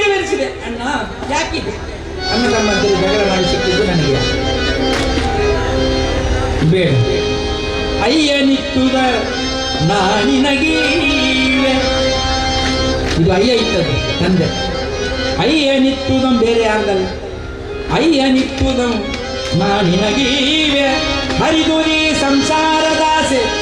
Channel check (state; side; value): identical; both; correlation 1.00